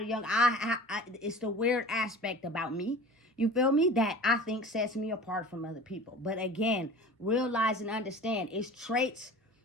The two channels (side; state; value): both; normal; correlation 0.39